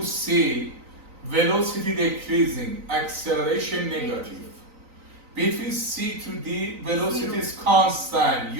C, velocity decreasing, acceleration negative. Between C to D, velocity is constant,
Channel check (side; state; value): left; late; 3.9 ms